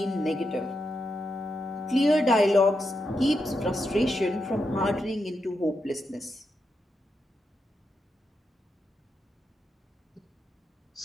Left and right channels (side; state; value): both; normal; correlation 0.85